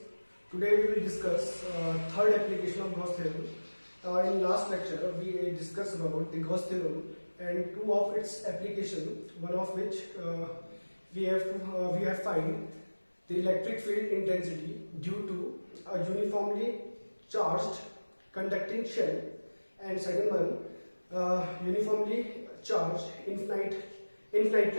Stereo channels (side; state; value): both; inverted; correlation -1.00